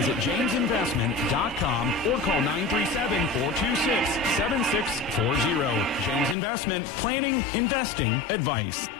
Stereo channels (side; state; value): right; drops out; at 6.4 s